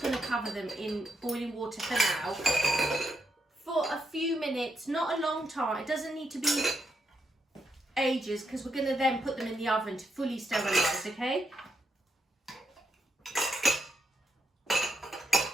cover them in boiling water for now. For a few minutes, not a long time. It doesn't need to be ages, because we're gonna then put them in the oven to fully sterilise, okay?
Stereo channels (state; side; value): normal; both; correlation 0.81